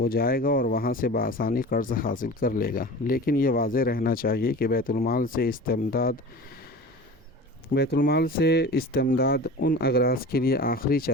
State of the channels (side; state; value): both; normal; correlation 0.36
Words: جائے گا اور وہاں سے بآسانی قرض حاصل کر لے گا۔ لیکن یہ واضح رہنا چاہیے کہ بیت المال سے استمداد ان اغراض کے لیے آخری